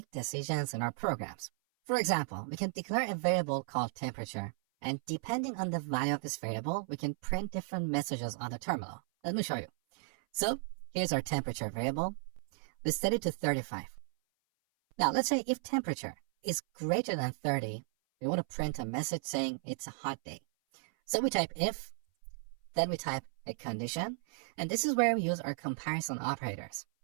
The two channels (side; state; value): left; silent; 55 dB below the other